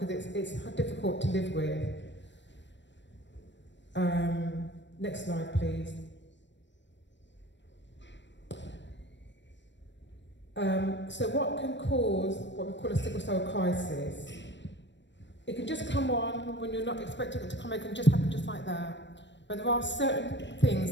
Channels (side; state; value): right; late; 0.53 ms